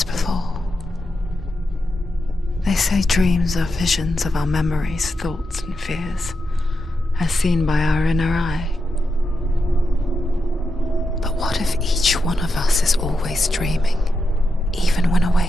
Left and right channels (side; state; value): both; normal; correlation 0.87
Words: before. They say dreams are visions of our memories, thoughts, and fears, as seen by our inner eye. But what if each one of us is always dreaming, even when